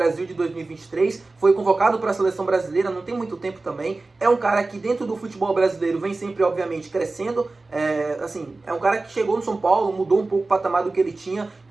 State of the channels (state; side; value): quieter; left; 3.4 dB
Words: de 2023, foi convocado para a seleção brasileira, não tem muito tempo também. É um cara que dentro do futebol brasileiro vem sempre, obviamente, crescendo. É um cara que chegou no São Paulo, mudou um pouco o patamar do que ele tinha,